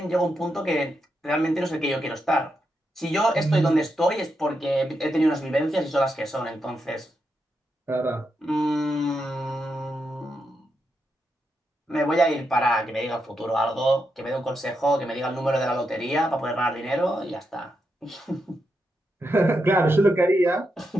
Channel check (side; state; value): both; normal; correlation 0.84